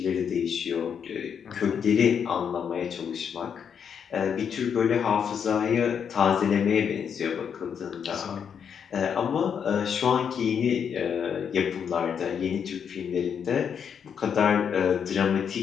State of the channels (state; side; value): quieter; right; 7.4 dB